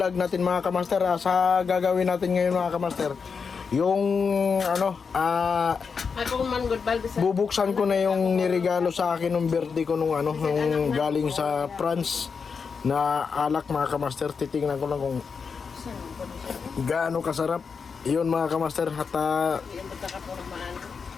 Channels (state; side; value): quieter; right; 5.6 dB